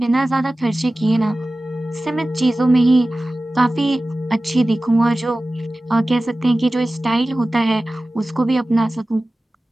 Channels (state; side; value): normal; both; correlation 0.96